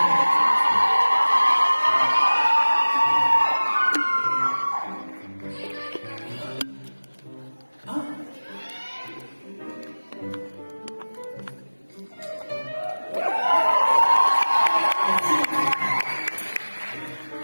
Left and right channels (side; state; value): both; inverted; correlation -1.00